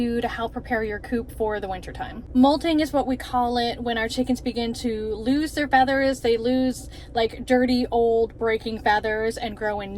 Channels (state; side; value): identical; both; correlation 1.00